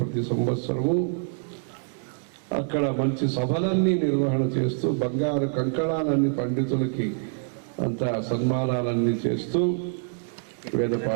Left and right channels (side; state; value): left; silent; 61 dB below the other